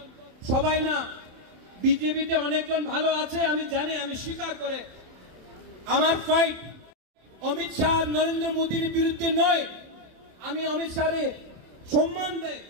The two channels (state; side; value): late; left; 27 ms